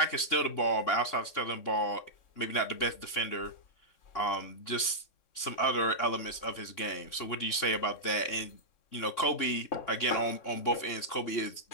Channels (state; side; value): late; right; 3.6 ms